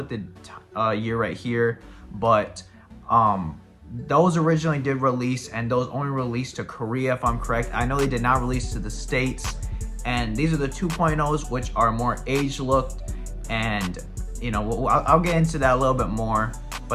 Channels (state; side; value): identical; both; correlation 1.00